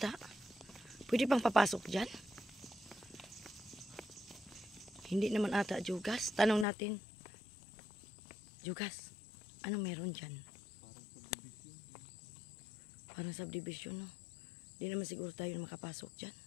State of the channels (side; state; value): right; drops out; at 6.7 s